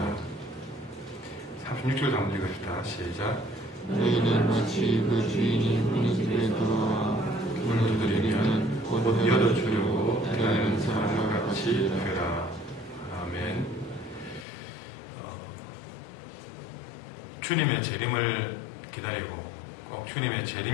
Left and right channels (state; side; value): drops out; right; at 14.5 s